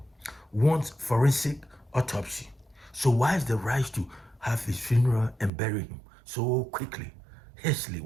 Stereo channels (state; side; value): drops out; left; at 5.5 s